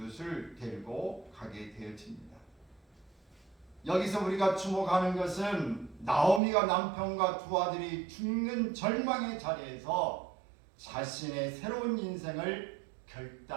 데리고 가게 되어집니다. 여기서 우리가 주목하는 것은 나오미가 남편과 두 아들이 죽는 절망의 자리에서 자신의 새로운 인생을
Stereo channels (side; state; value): left; drops out; at 6.4 s